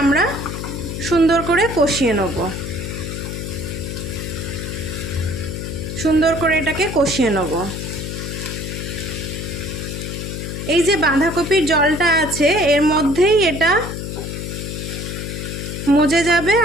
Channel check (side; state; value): left; noise; hum, 6 dB below the sound